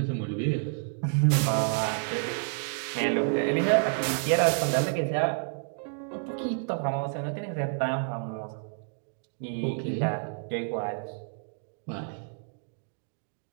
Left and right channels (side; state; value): left; silent; 58 dB below the other